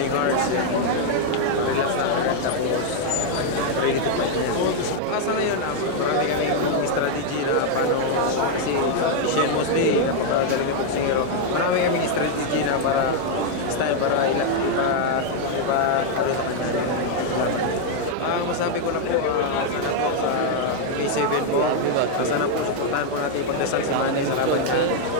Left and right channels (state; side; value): different; both; correlation 0.00